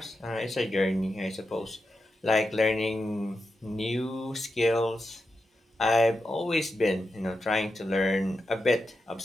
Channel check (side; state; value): both; normal; correlation 0.88